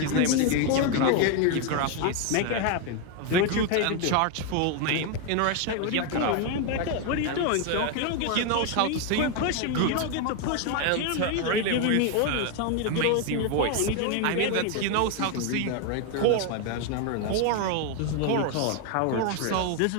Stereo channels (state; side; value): different; both; correlation 0.01